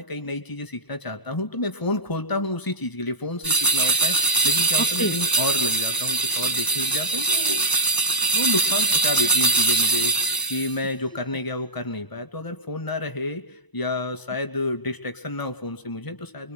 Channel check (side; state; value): right; late; 1.0 ms